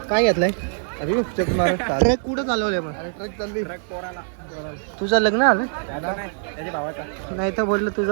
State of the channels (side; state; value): left; silent; 59 dB below the other